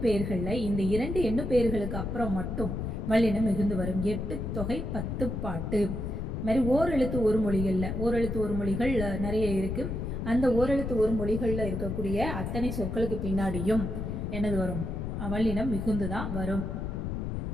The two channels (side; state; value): left; noise; rumble, 3 dB below the sound